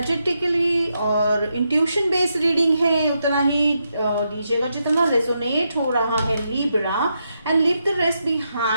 और इंट्यूशन बेस्ड रीडिंग है। उतना ही लीजिएगा जितना रेजोनेट हो रहा है Libra and leave the rest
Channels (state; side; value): inverted; both; correlation -0.83